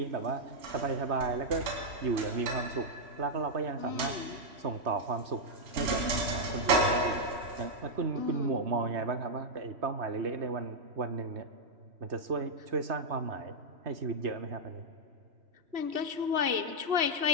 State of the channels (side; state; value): left; late; 3.1 ms